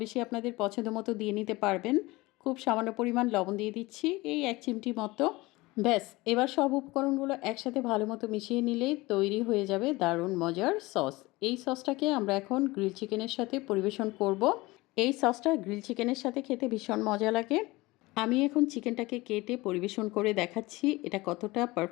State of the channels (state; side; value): quieter; right; 21.2 dB